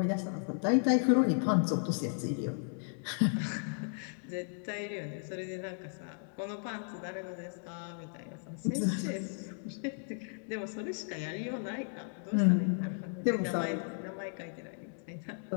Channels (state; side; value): silent; right; 55 dB below the other